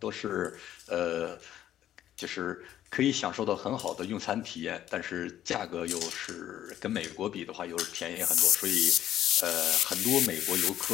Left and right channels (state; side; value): quieter; right; 11.8 dB